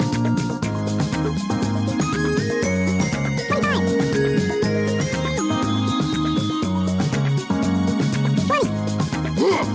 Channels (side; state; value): both; identical; correlation 1.00